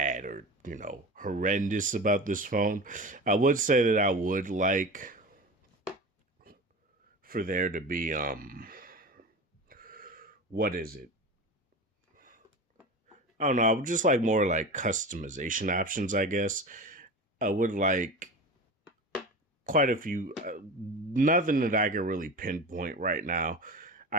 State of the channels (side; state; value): both; normal; correlation 0.31